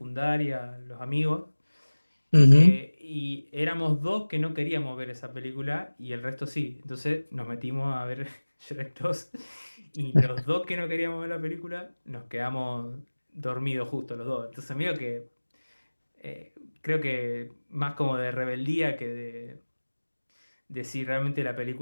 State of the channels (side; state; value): both; inverted; correlation -1.00